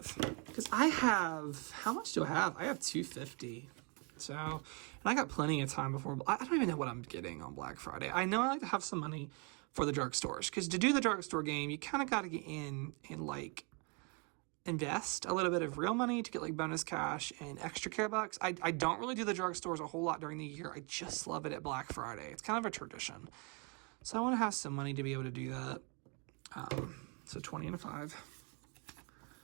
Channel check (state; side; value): quieter; left; 33.2 dB